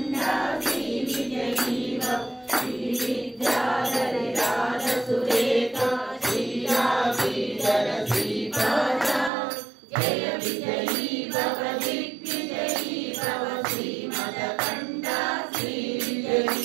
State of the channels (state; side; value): drops out; left; at 9.3 s